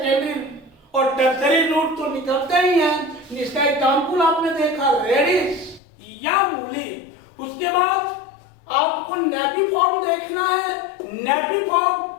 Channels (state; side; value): drops out; right; at 5.8 s